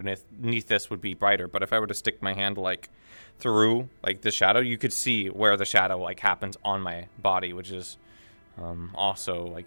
this would be brighter. But if I were to stick my hand, like, through, like, the shadow, you could see where the shadow, like, happens on my body, which is also,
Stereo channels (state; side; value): inverted; both; correlation -1.00